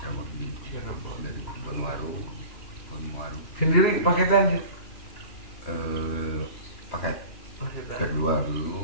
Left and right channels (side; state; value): right; late; 2.9 ms